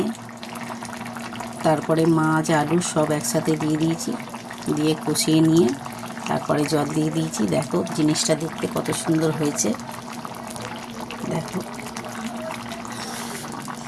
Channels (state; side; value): identical; both; correlation 1.00